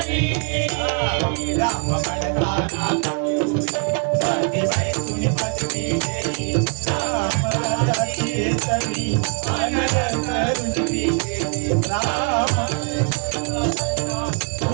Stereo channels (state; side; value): quieter; left; 39.2 dB